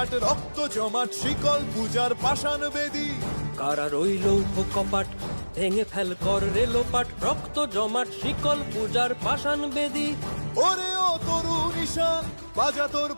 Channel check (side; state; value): both; inverted; correlation -1.00